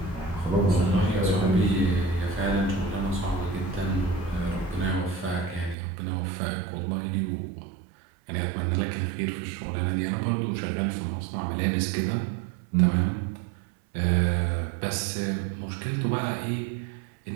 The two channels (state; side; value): drops out; left; at 5.8 s